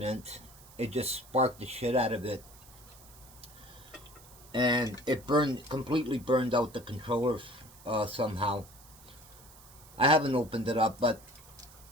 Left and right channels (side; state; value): right; noise; hiss, 22 dB below the sound